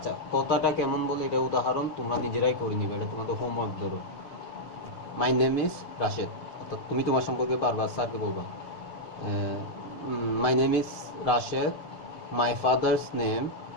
কথাটা কেমন বলে এটা উদাহরণ তোমরা নিজেরাই করে নিবে, এটা তোমাদের হোমওয়ার্ক। ধরো মাই নেম ইজ রাশেদ, অর্থাৎ তুমি তোমার সম্পর্কে বারবার স্যারকে বলবা my name is Rashed, my father's name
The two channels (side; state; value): right; late; 6.6 ms